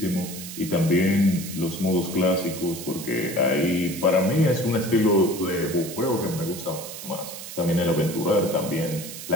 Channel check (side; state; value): right; noise; hiss, 11 dB below the sound